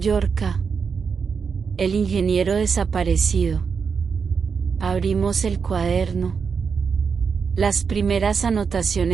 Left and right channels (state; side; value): quieter; left; 5.8 dB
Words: el ingeniero desaparecido. Abrimos el cuaderno. Las primeras